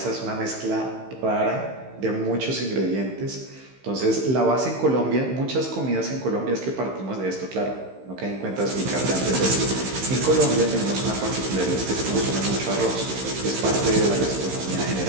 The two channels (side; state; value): left; late; 15 ms